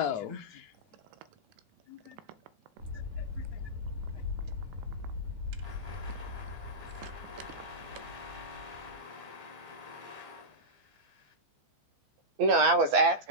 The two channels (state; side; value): late; left; 15 ms